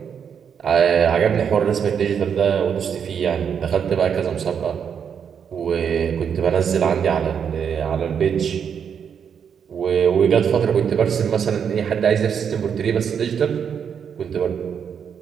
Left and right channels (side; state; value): left; quieter; 7.5 dB